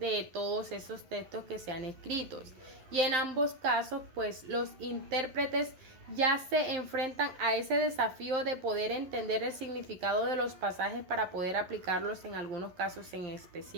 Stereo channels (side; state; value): left; late; 11 ms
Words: todos esos textos que se han escrito. Y en ambos casos, pues los intérpretes ya se enfrentan a ese desafío de poder entender el significado de los pasajes para poder aplicarlos en algunos casos en